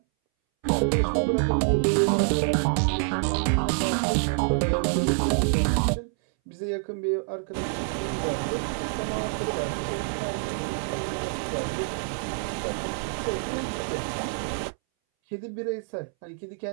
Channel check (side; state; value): left; silent; 60 dB below the other